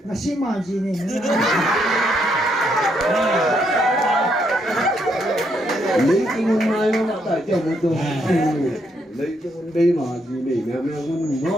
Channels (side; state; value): both; normal; correlation 0.75